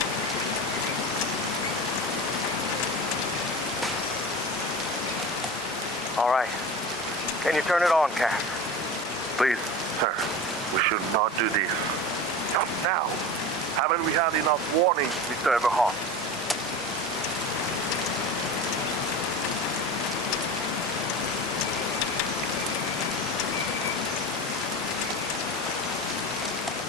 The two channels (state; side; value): normal; both; correlation 0.30